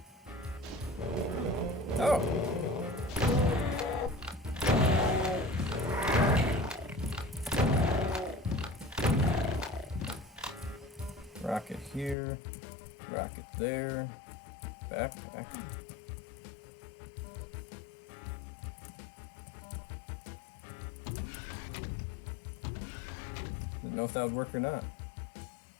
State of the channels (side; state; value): right; drops out; at 12.2 s